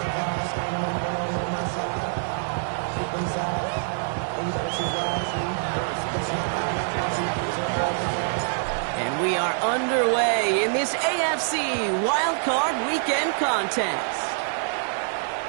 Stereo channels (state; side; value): silent; left; digital silence